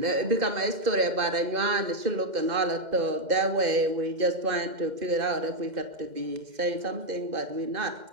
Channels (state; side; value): late; left; 2.1 ms